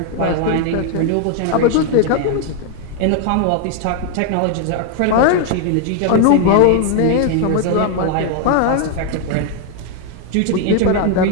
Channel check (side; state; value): both; different; correlation 0.00